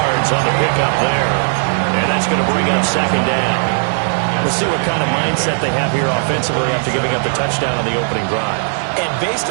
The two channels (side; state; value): left; silent; 69 dB below the other